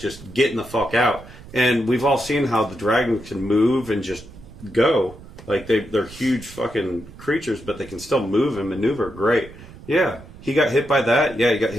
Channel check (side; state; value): right; noise; rumble, 18 dB below the sound